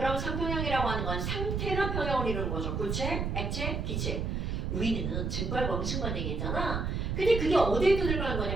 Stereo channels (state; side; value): noise; right; rumble, 1 dB below the sound